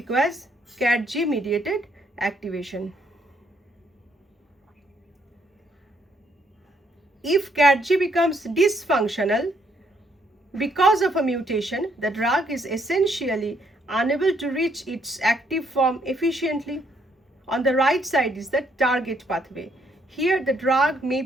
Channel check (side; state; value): both; normal; correlation 0.70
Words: CAT-G mediated activation. If CAT-G becomes dysfunctional because of a mutation, the drug is essentially unable to reach its active form efficiently. On the right side is the target pathway. Here the drug may